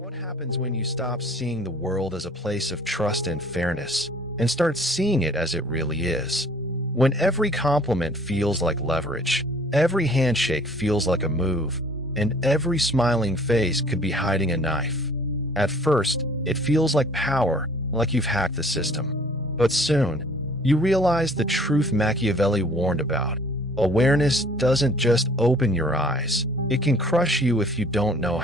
happens when you stop seeing the world as a place of trust and fairness and start seeing it as it really is. When every compliment feels like leverage, every handshake feels like a move, and every smiling face could be hiding a knife. At first, it feels like power, like you've hacked the system. But soon, you realize the truth Machiavelli warned about. Awareness doesn't just open your eyes, it can crush you if you don't know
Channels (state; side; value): normal; both; correlation 0.53